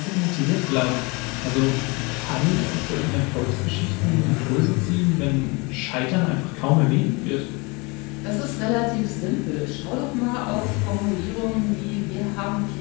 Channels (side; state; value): right; quieter; 27.7 dB